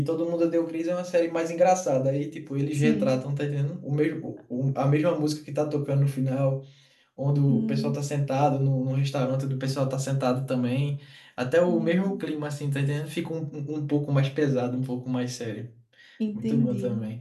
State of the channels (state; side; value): identical; both; correlation 1.00